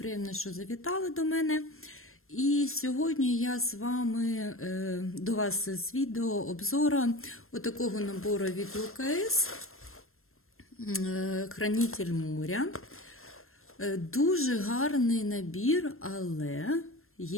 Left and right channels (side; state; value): right; late; 0.62 ms